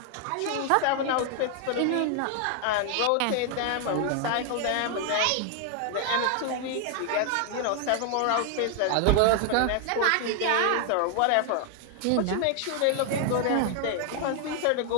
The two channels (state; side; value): different; both; correlation 0.00